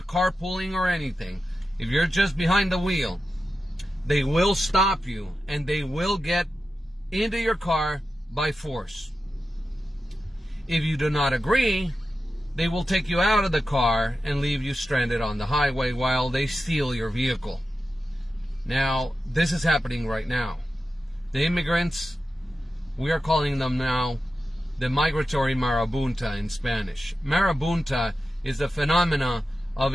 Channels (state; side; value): normal; both; correlation 0.91